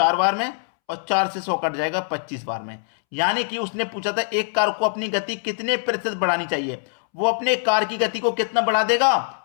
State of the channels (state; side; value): silent; right; 64 dB below the other